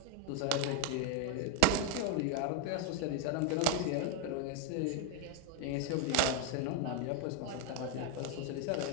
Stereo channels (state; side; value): different; both; correlation 0.01